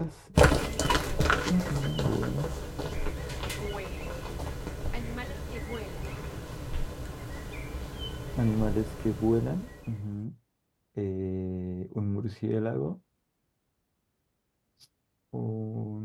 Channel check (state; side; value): identical; both; correlation 1.00